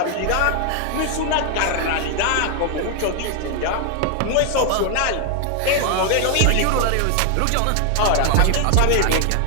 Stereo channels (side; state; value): both; different; correlation 0.00